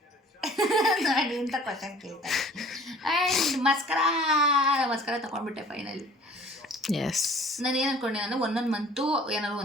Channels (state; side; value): normal; both; correlation 0.50